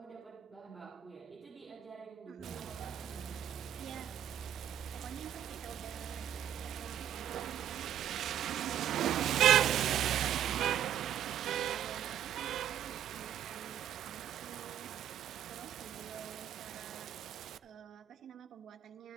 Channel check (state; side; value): quieter; left; 10.4 dB